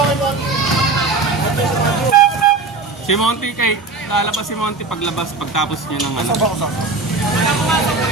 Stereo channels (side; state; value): left; quieter; 3.9 dB